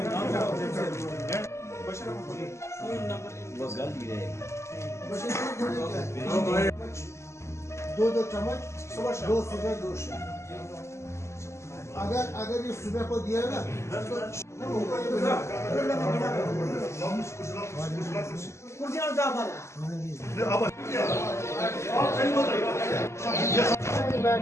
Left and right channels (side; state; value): right; late; 0.13 ms